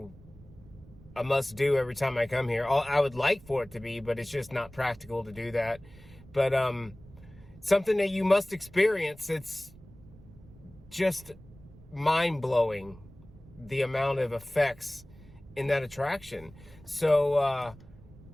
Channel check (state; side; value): noise; right; rumble, 21 dB below the sound